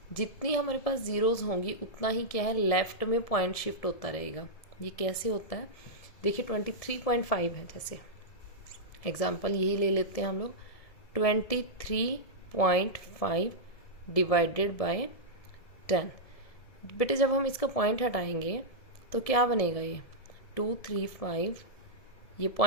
जितनी हमारे पास जीरोज़ होंगी उतना ही क्या है, लेफ्ट में पॉइंट शिफ्ट होता रहेगा. ये कैसे होता है देखिए, 23.5 है. जैसे एग्जाम्पल यही ले लेते हैं हम लोग. 23.5 डिवाइडेड बाय 10. बेटे जब हम इसका पॉइंट हटाएंगे तो क्या बनेगा, ये 235. ये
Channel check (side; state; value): right; late; 1.7 ms